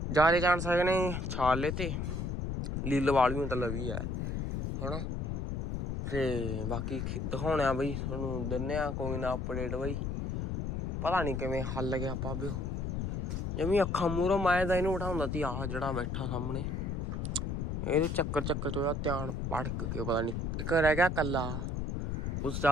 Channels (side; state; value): left; noise; rumble, 2 dB below the sound